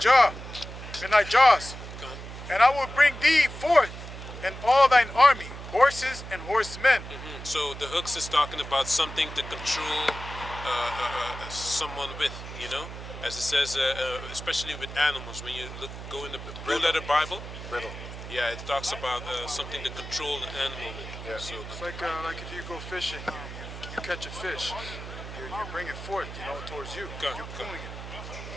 and I will bring thee forth and all thine army, horses and horsemen. So the hooks is talking about something to control someone with, you know, as it says, especially with animals. When you go in the Blue Letter Bible, Riddle. yeah, it talks about something to control the animal with. Yeah. So It's like if you go fishing, you catch a fish, you bring it forth, you know, towards you. Go, You're go. pulling it.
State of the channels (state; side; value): noise; right; hum, 11 dB below the sound